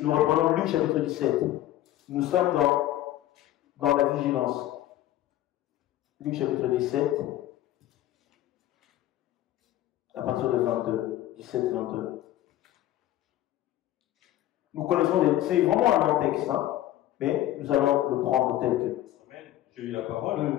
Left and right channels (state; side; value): quieter; right; 13.8 dB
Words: nous reprenons Luc chapitre 17. Nous sommes dans la vigilance. Luc chapitre 17, à partir de 22. 17-22. Nous connaissons, c'est vraiment un long texte, hein, mais nous allons le prendre tel que. Amen. J'ai eu la